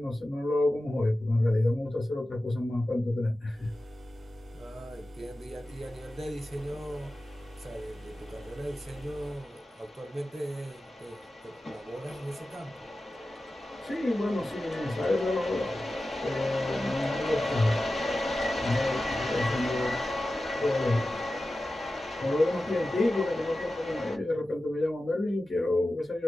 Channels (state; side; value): normal; both; correlation 0.94